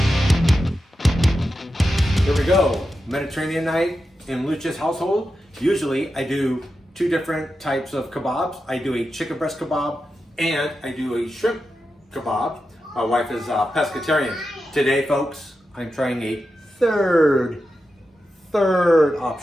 Here we go. Mediterranean night in Looch's household. Usually I do two different types of kebabs. I do a chicken breast kebab and I do a shrimp kebab. My wife is a pescatarian. Today, folks, I'm trying a third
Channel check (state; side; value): normal; both; correlation 0.90